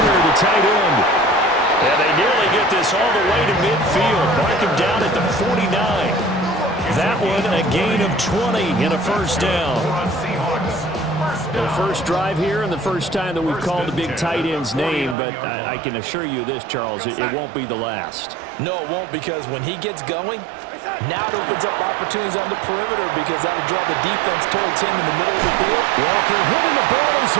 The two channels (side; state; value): left; drops out; at 15.2 s